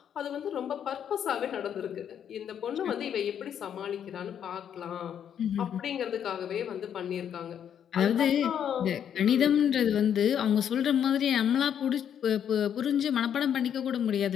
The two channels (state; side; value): quieter; right; 8.9 dB